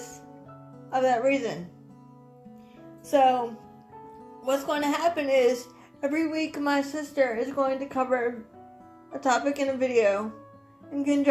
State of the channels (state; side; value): identical; both; correlation 1.00